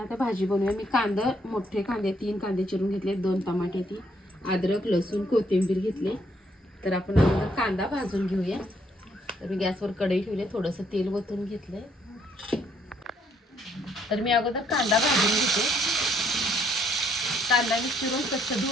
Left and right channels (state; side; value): normal; both; correlation 0.69